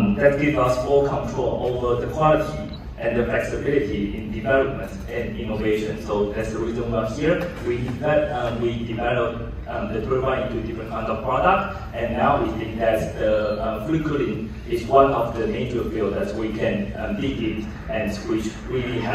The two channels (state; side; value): identical; both; correlation 1.00